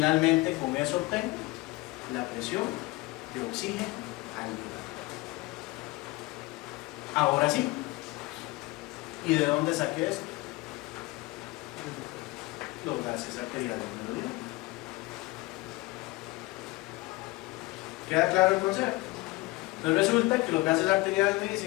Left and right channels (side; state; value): right; quieter; 21.9 dB